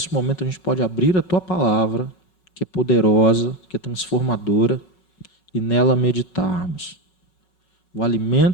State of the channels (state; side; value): late; right; 5.4 ms